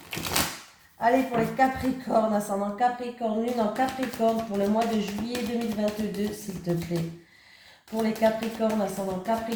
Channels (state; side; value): identical; both; correlation 1.00